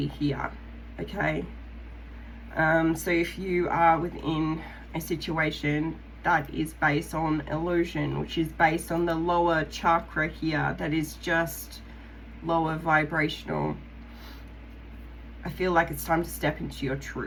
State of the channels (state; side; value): identical; both; correlation 1.00